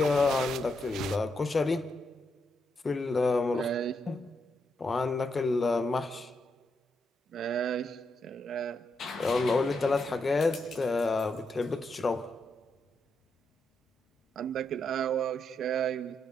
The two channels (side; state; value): both; normal; correlation 0.81